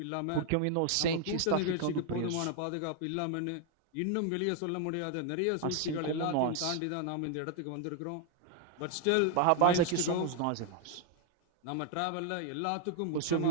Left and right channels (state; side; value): different; both; correlation 0.00